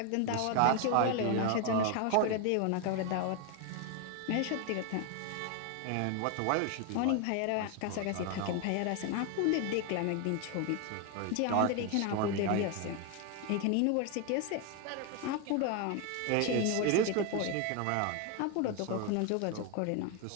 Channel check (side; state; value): both; different; correlation 0.01